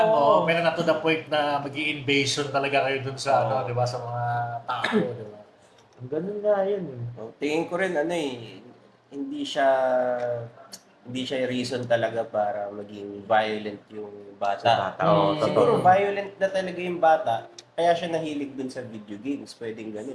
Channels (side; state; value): both; identical; correlation 1.00